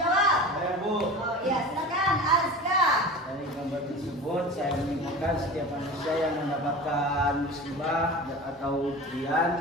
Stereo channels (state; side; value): normal; both; correlation 0.34